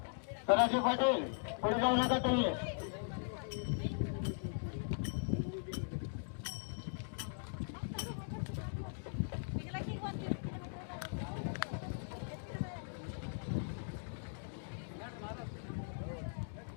सदाशिव पाटील पुढे जाऊ नका तुम्ही.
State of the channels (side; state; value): right; silent; digital silence